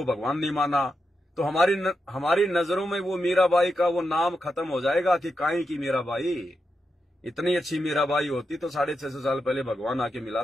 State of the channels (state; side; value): normal; both; correlation 0.86